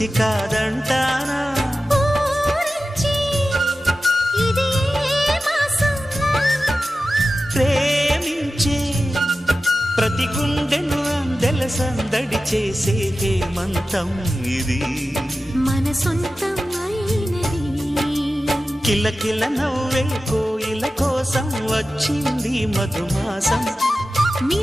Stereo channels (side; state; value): both; normal; correlation 0.94